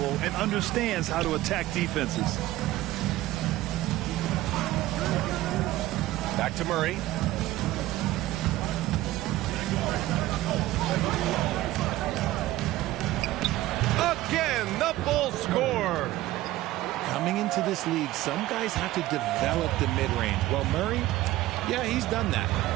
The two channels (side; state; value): left; quieter; 16.2 dB